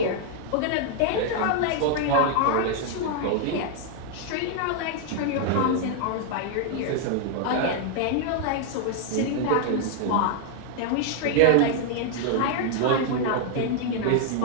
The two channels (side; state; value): both; different; correlation 0.00